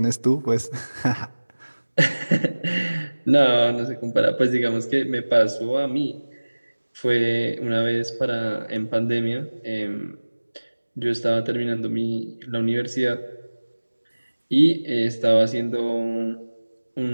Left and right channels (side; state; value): both; inverted; correlation -1.00